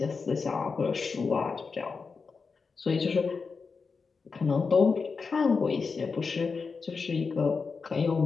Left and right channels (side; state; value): right; quieter; 4.9 dB